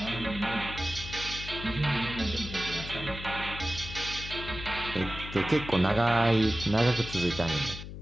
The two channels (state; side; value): noise; left; hum, 10 dB below the sound